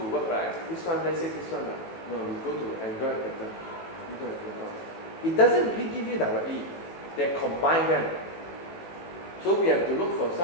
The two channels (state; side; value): late; right; 18 ms